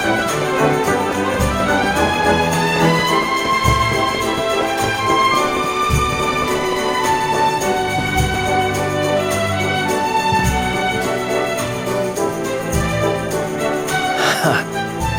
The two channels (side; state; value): both; identical; correlation 1.00